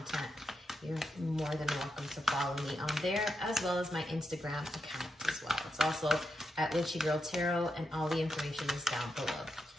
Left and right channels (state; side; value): normal; both; correlation 0.86